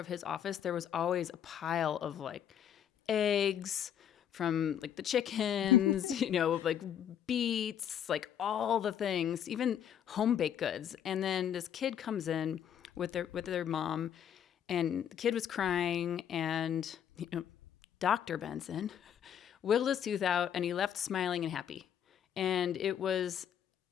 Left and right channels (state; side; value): quieter; right; 9.3 dB